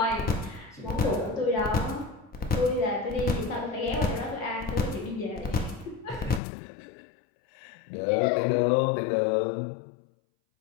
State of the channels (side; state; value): right; drops out; at 6.4 s